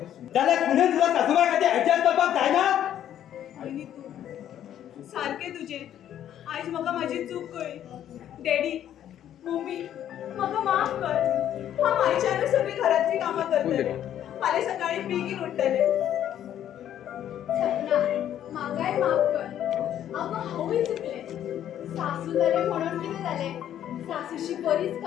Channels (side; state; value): right; quieter; 10.8 dB